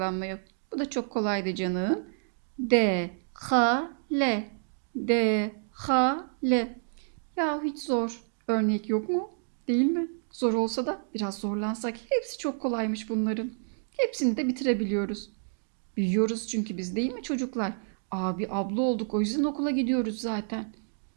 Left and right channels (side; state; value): left; silent; digital silence